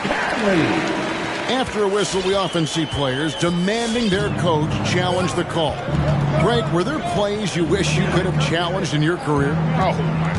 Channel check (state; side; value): identical; both; correlation 1.00